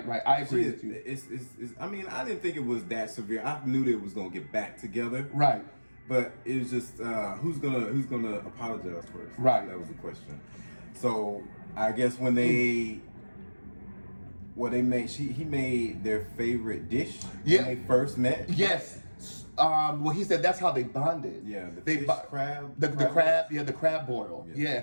I agree with you. It's I mean, I didn't think it was that severe. I knew they was gonna get back together. Right. But it was just who's gonna apologize first? Right. That was the question. So I guess when he made their favorite dish when they first met. Yes. Well, he said that's how they bonded. Yeah, the crab. The crab boil.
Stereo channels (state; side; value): inverted; both; correlation -1.00